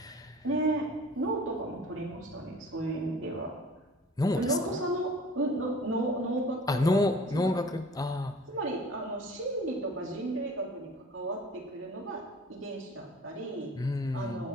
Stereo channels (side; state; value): both; normal; correlation 0.47